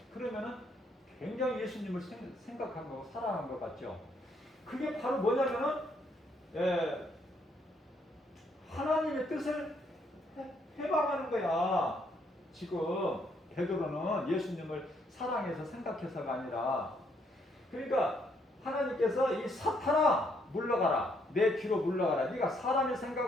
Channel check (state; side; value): normal; both; correlation 0.71